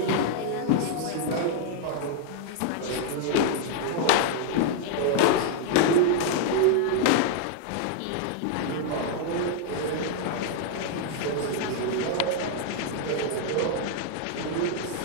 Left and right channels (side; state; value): both; different; correlation -0.01